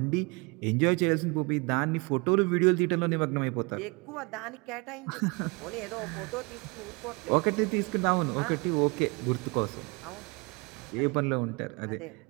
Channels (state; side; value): quieter; left; 28.5 dB